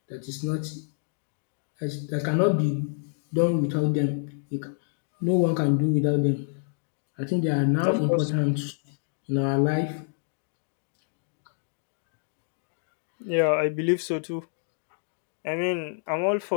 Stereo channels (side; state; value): right; silent; digital silence